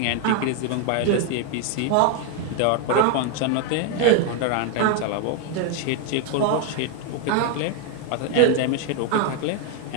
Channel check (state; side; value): different; both; correlation 0.01